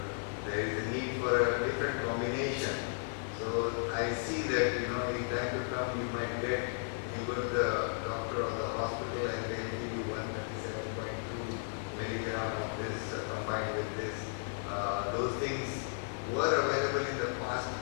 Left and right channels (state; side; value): silent; right; digital silence